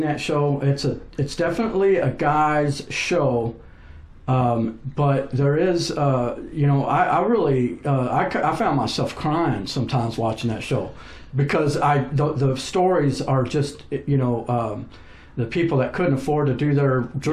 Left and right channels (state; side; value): identical; both; correlation 1.00